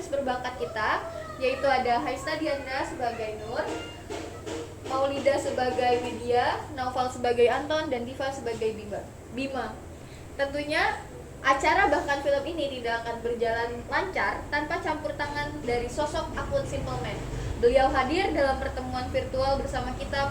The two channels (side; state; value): both; identical; correlation 1.00